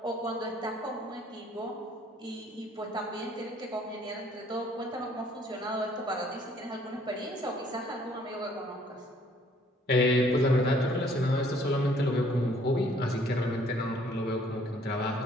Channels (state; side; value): normal; both; correlation 0.60